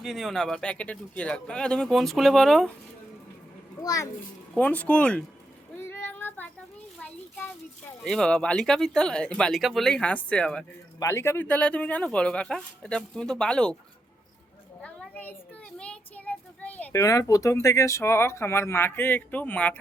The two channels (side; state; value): both; normal; correlation 0.83